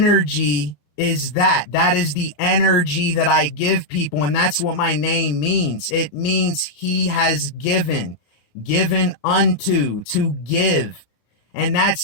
is that. That is the energy that I give people. And that's what my name means. It means he has given unto, to give. And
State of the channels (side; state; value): right; late; 34 ms